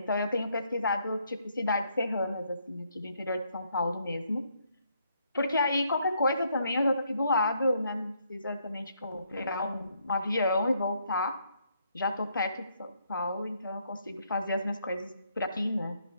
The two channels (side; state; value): both; inverted; correlation -0.72